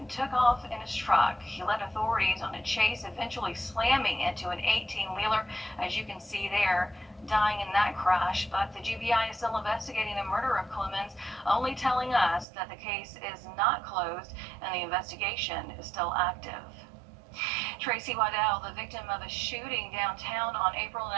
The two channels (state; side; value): drops out; left; at 12.5 s